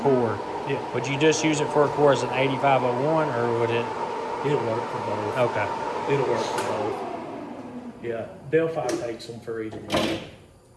Yeah. would you just use it for a core as an 8501, or would it? It'll work for both. Okay. It'll work for both. Yeah. Delphi takes them for either one.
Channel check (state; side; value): identical; both; correlation 1.00